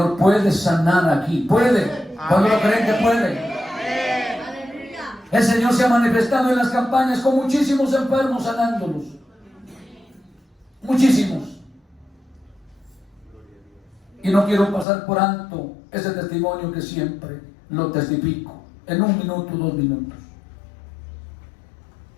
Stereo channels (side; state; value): right; drops out; at 14.9 s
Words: puede sanar aquí. Puede. ¿Cuándo lo creen que puede? El Señor se ha manifestado en las campañas con muchísimos enfermos, sanándolos. Muchísimos. Y no quiero pasar por alto ese testimonio que siempre lo testifico. En 1 minuto, 2 minutos.